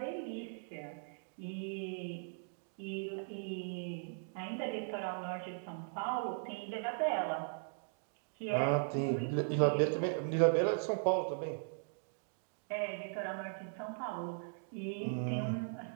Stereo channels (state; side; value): silent; left; digital silence